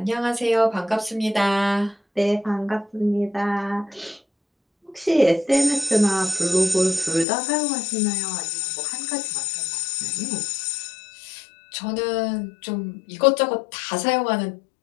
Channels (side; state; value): right; drops out; at 7.2 s